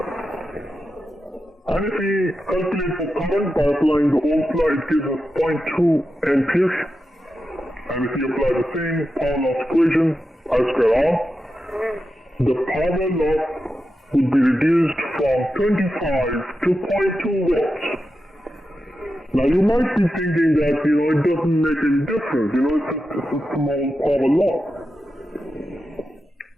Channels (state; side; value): normal; both; correlation 0.90